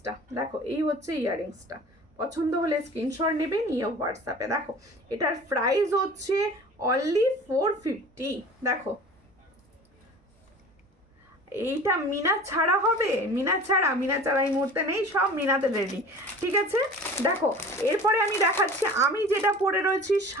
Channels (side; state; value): both; normal; correlation 0.41